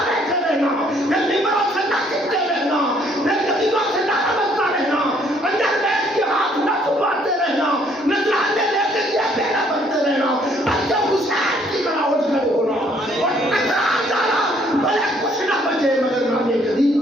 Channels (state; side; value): normal; both; correlation 0.65